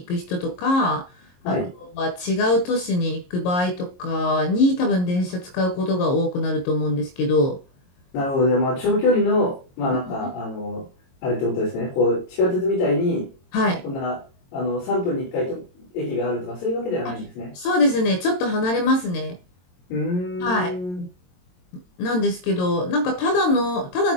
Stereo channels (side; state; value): right; late; 22 ms